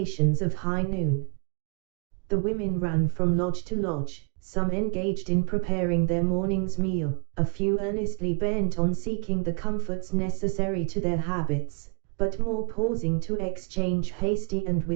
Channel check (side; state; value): left; quieter; 33.8 dB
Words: of high noon. The women ran from lodge to lodge, some engaged in preparing their morning's meal, a few earnestly bent on seeking the comforts necessary to their habits, but more pausing to exchange hasty and